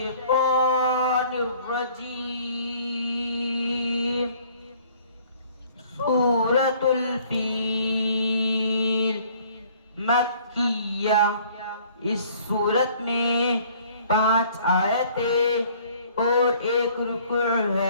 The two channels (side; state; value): both; inverted; correlation -0.56